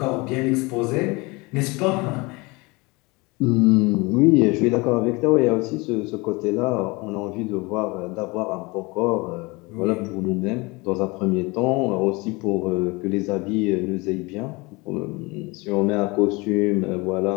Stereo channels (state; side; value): quieter; right; 25.3 dB